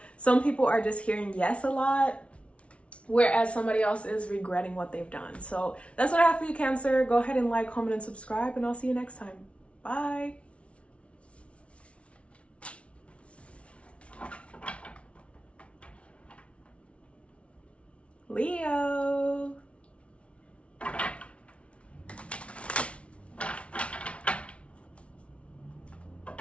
some people are just hearing yes a lot, whereas somebody else is regretting what they've done. So that's what I have for you, Cancer. Go ahead and like, comment, and subscribe, and I'll see you next time. Bye. Leo.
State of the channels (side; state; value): right; late; 0.061 ms